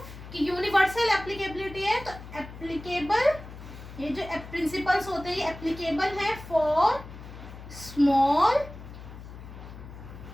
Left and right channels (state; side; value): noise; left; hum, 14 dB below the sound